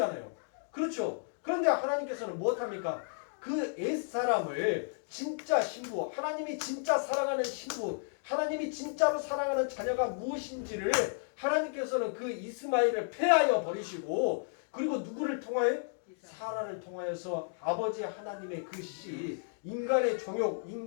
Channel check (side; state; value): right; silent; digital silence